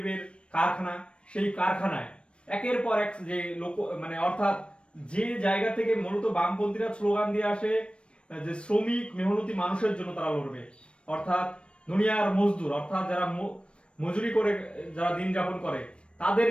কারখানা, সেই কারখানায় একের পর এক যে অর্থাৎ যে জায়গা থেকে মূলত বামপন্থীরা স্লোগান দিয়ে আসে যে শ্রমিক মেহনতি মানুষের জন্য তারা লড়বে, অর্থাৎ দুনিয়ার মজদুর, অর্থাৎ যারা মজুরি করে যারা দিন যাপন করে তাদের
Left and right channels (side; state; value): right; late; 0.058 ms